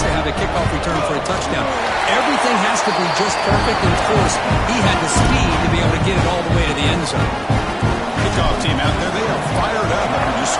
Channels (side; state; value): both; identical; correlation 1.00